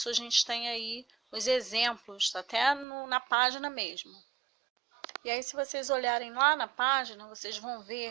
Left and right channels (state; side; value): drops out; left; at 2.9 s